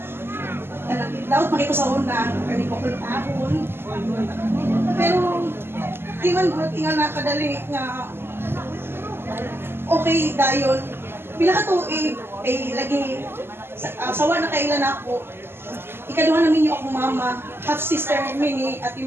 Daot makiko sa una, kani ko kultahon. Pero di man ko tinga nakadali nga okay dayon. Pila ka tuig ay lagi sawa na kailan ako. Ikaduha namin yung akong mama, half sister mini Ate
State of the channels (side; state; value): left; late; 0.11 ms